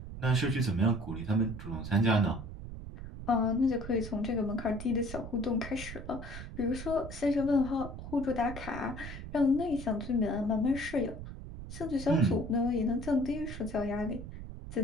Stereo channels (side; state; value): right; noise; rumble, 10 dB below the sound